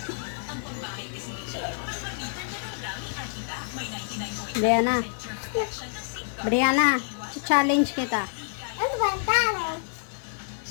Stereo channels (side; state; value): right; silent; digital silence